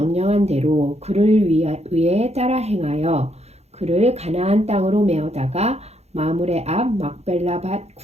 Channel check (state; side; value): late; left; 0.31 ms